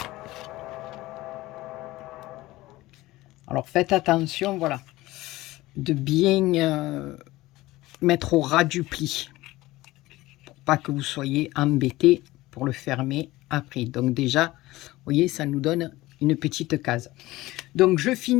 Alors faites attention, voilà, de bien mettre au ras du pli, pour pas que vous soyez embêtés pour le fermer après. Donc déjà, vous voyez, ça nous donne une petite case. Donc je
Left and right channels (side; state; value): right; quieter; 18.3 dB